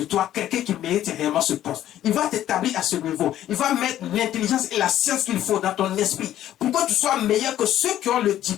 toi quelqu'un qui mérite réellement ce poste. Il va t'établir à ce niveau. Il va mettre l'intelligence et la science qu'il faut dans ton esprit pour que tu sois meilleur que ceux qui ont le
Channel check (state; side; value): quieter; right; 12.3 dB